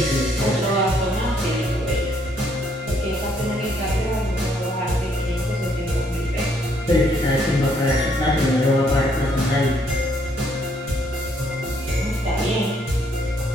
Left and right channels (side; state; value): both; normal; correlation 0.69